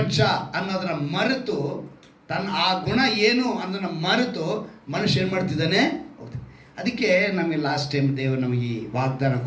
ಅನ್ನೋದನ್ನ ಮರೆತು, ತನ್ನ ಆ ಗುಣ ಏನು ಅನ್ನೋದನ್ನ ಮರೆತು ಮನುಷ್ಯ ಏನು ಮಾಡ್ತಿದ್ದಾನೆ? ಅದಕ್ಕೆ ನಮಗೆ ಲಾಸ್ಟ್ ಟೈಮ್ ದೇವರು ನಮಗೆ ವಾಗ್ದಾನ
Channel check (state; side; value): identical; both; correlation 1.00